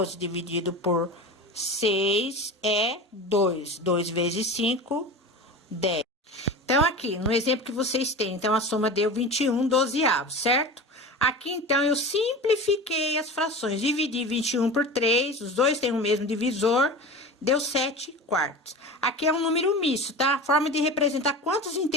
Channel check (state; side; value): normal; both; correlation 0.31